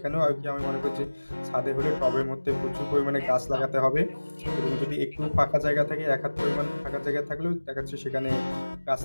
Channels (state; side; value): inverted; both; correlation -1.00